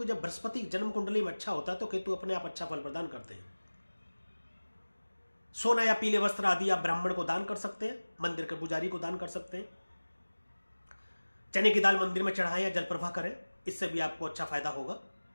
जब बृहस्पति जन्म कुंडली में अच्छा होता है तो केतु अपने आप अच्छा फल प्रदान करते हैं। सोना या पीले वस्त्र आदि आप ब्राह्मण को दान कर सकते हैं, मंदिर के पुजारी को दान कर सकते हैं। चने की दाल मंदिर में चढ़ाएं या जल प्रवाह करें, इससे भी आपको अच्छा फायदा होगा।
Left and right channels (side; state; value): both; inverted; correlation -1.00